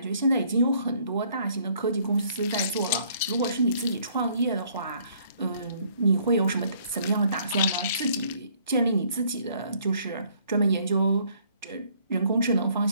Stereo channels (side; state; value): both; inverted; correlation -0.63